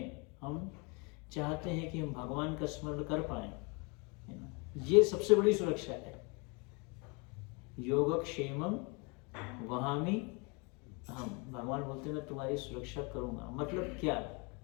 हम चाहते हैं कि हम भगवान का स्मरण कर पाए, है ना। ये सबसे बड़ी सुरक्षा है। योगक्षेमम वहामि हम, भगवान बोलते हैं मैं तुम्हारी सुरक्षा करूंगा। मतलब क्या?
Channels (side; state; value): right; quieter; 31.1 dB